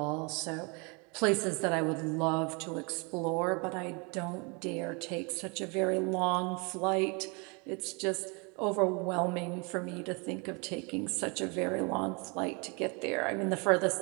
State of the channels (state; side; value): quieter; left; 31.4 dB